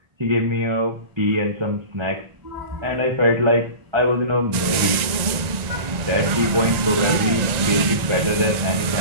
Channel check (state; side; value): late; left; 1.9 ms